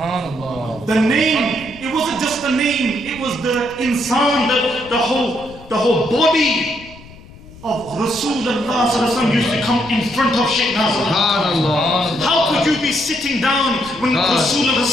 The name, it wasn't just the name, it was the insan, the whole body of Rasulullah used to come in front of Shaykh Nazim al-Haqqani. How could you be sitting down when Rasulullah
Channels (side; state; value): left; noise; rumble, 20 dB below the sound